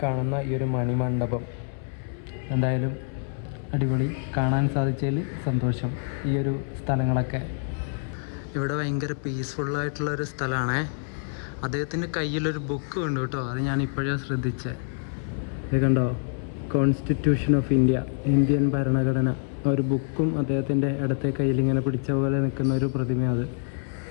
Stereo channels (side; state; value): right; silent; 58 dB below the other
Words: കാണുന്ന ഈ ഒരു മണിമണ്ഡപം. എന്തായാലും അടിപൊളി, കാണാൻ സാധിച്ചതിൽ സന്തോഷം. ഈ ഒരു സ്ഥലങ്ങളൊക്കെ ഇവിടെ ഭയങ്കര പീസ്ഫുള്ളായിട്ടുള്ളൊരു സ്ഥലമാണേ. അദ്ദേഹത്തിൻ്റെ കയ്യിലൊരു ബുക്ക് ഉണ്ട് കേട്ടോ. അത് ഞാൻ ഇപ്പോഴാണ് ശ്രദ്ധിച്ചത്. ഇത് കണ്ടോ, കോൺസ്റ്റിറ്റ്യൂഷൻ ഓഫ് ഇന്ത്യ, ഇന്ത്യൻ ഭരണഘടന. ഒരു ബുക്കും അദ്ദേഹത്തിൻ്റെ ഇടത്തെ കയ്യിൽ ഇങ്ങനെ പിടിച്ച പോലെ നിൽക്കുന്ന ഒരു പ്രതിമ. അത്